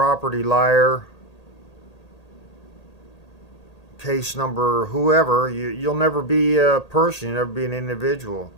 liar, case number whoever. You'll never be a person, you'll never be an individual.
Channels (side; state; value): right; late; 1.8 ms